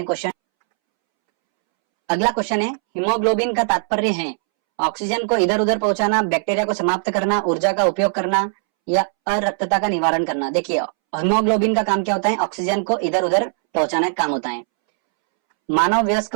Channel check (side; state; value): left; silent; 66 dB below the other